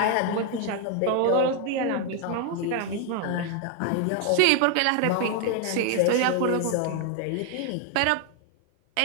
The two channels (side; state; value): both; different; correlation 0.01